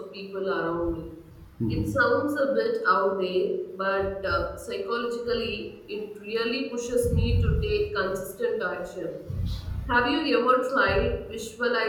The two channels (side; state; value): both; identical; correlation 1.00